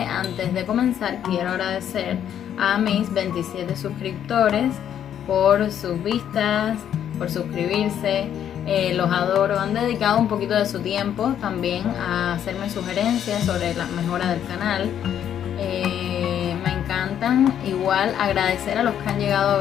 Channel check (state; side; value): quieter; right; 9.7 dB